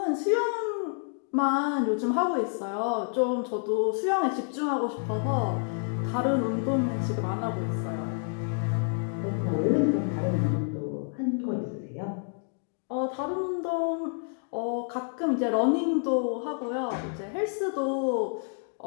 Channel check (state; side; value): silent; right; 59 dB below the other